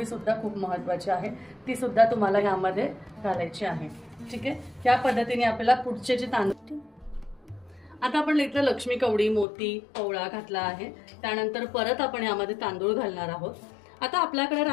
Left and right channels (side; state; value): right; drops out; at 9.5 s